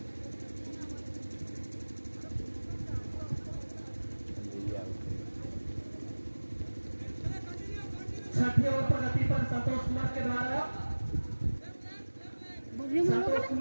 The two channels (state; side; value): inverted; both; correlation -1.00